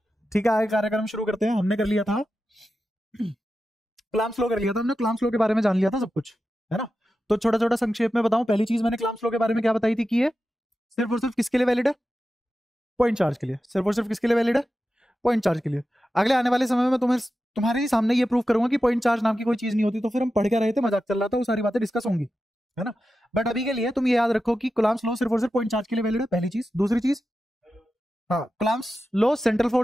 ठीक है, आगे कार्यक्रम शुरू करते हैं। हमने कर लिया था क्लाम स्लो कर लिया था हमने, क्लाम स्लो के बारे में जान लिया था सब कुछ, है ना। तो छोटा छोटा संक्षेप में बताऊं, पहली चीज मैंने क्लाम स्लो के बारे में क्या बताई थी कि ये सिर्फ और सिर्फ किसके लिए वैलिड है? पॉइंट चार्ज के लिए। सिर्फ और सिर्फ किसके लिए वैलिड है? पॉइंट चार्ज के लिए। अगले आने वाले समय में तुम्हारे ही सामने ये प्रूव करूंगा कि पॉइंट चार्ज नाम की कोई चीज नहीं होती, तो फिर हम पढ़ के रहे थे, मजाक चल रहा था, वो सारी बातें डिस्कस होंगी, है ना। बट अभी के लिए तुम ये याद रखो कि कूलम्ब्स लॉ सिर्फ और सिर्फ पॉइंट चार्ज के लिए वैलिड है, पहली चीज। दूसरी चीज, हाँ कूलम्ब्स लॉ सेंट्रल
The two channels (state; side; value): normal; both; correlation 0.91